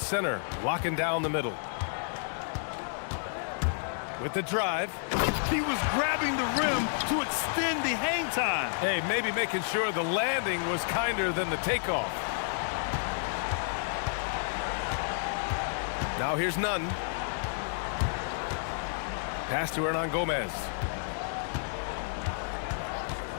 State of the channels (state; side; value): silent; right; 57 dB below the other